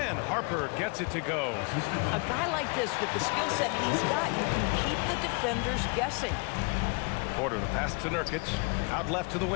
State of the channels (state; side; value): quieter; right; 33.3 dB